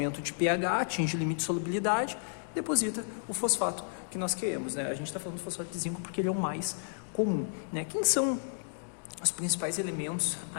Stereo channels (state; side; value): silent; right; digital silence